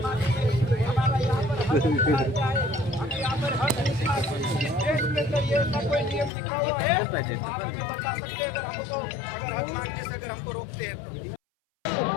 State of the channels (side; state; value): right; drops out; at 6.3 s